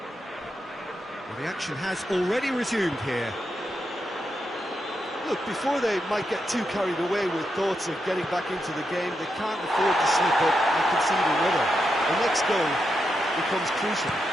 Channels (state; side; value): normal; both; correlation 0.85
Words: Well, the action has already resumed here. Look, before they might get too carried away with thoughts of getting back into the game, they can't afford to slip up and concede another. The next goal becomes crucial.